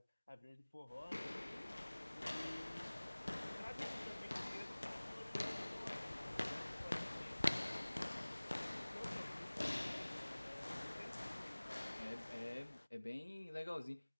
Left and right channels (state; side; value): inverted; both; correlation -1.00